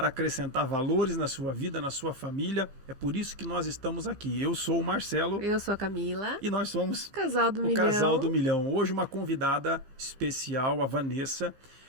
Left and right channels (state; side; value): late; left; 15 ms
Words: acrescentar valores na sua vida, na sua família. É por isso que nós estamos aqui. Eu sou o Marcelo. Eu sou a Camila. E nós somos Casal do o Milhão. Casal do Milhão. Hoje uma convidada especial, a Vanessa.